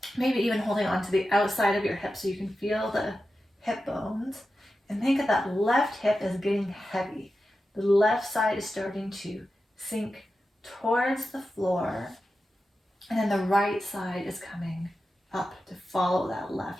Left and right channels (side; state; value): both; normal; correlation 0.92